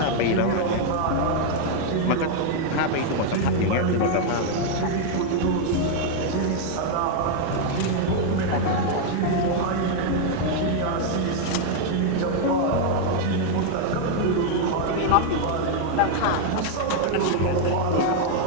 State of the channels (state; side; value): different; both; correlation 0.00